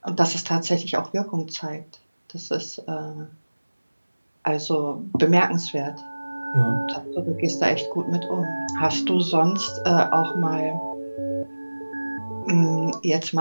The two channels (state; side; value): inverted; both; correlation -1.00